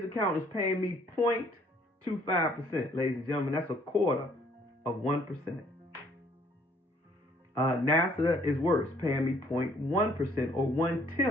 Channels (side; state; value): both; normal; correlation 0.62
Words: account is paying me 0.25%, ladies and gentlemen. That's a quarter of 1%. NASA is worse, paying me 0.1% or